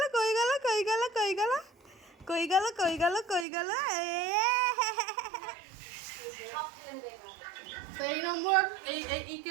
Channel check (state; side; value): drops out; left; at 3.5 s